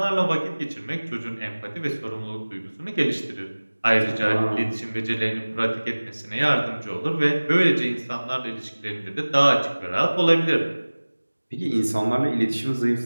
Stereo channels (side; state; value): both; inverted; correlation -1.00